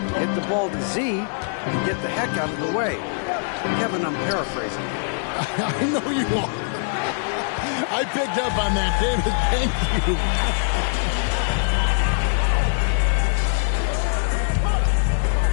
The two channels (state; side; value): silent; right; 64 dB below the other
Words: Hit the ball to Z and get the heck out of the way. Kevin, I'm paraphrasing. I know you are. I picked up on that, David. Thank you.